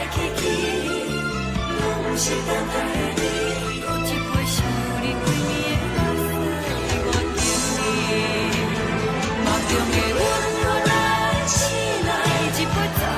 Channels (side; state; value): both; identical; correlation 1.00